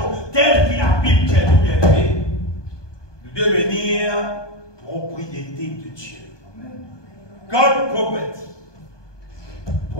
telle qu'il a Bible qui est tout bien aimé, de devenir propriété de Dieu. God property.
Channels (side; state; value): right; late; 1.2 ms